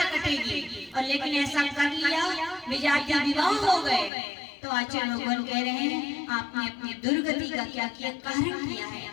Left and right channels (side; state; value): right; drops out; at 4.1 s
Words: कटेगी। और लेकिन ऐसा कर लिया, विजाति विवाह हो गए, तो आचार्य भगवान कह रहे हैं आपने अपनी दुर्गति का क्या किया? कारण किया है।